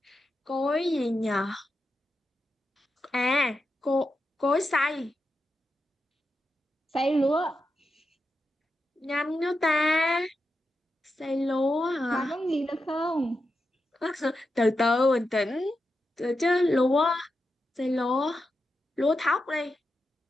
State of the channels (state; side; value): normal; both; correlation 0.88